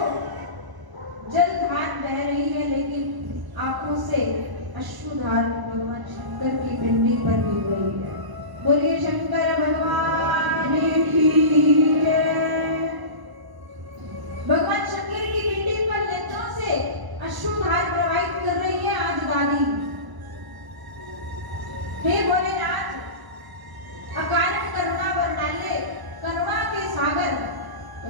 जलधार बह रही है, लेकिन आंखों से अश्रुधार भगवान शंकर की पिंडी पर गिर रही है। बोलिए शंकर भगवान की जय। भगवान शंकर की पिंडी पर नेत्रों से अश्रुधार प्रवाहित कर रही है आज दादी। हे भोलेनाथ, अकारण करुणा वर्णाल्य, करुणा के सागर,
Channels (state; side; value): late; left; 1.0 ms